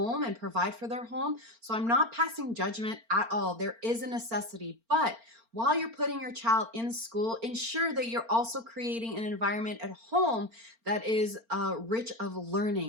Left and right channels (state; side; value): late; left; 4.4 ms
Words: and provide for their home. So I'm not passing judgment at all. There is a necessity, but while you're putting your child in school, ensure that you're also creating an environment at home that is rich of